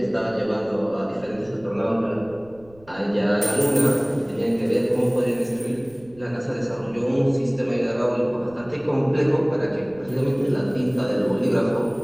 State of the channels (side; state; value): right; noise; rumble, 25 dB below the sound